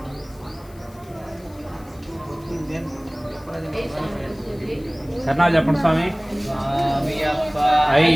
శరణాలు చెప్పండి స్వామి స్వామియప్ప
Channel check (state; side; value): noise; left; hiss, 26 dB below the sound